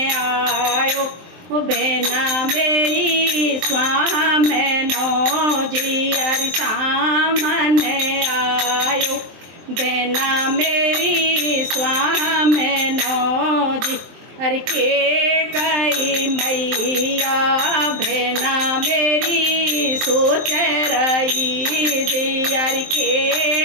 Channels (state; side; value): late; left; 23 ms